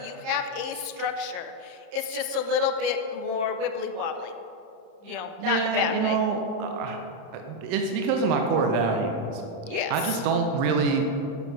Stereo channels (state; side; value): late; left; 32 ms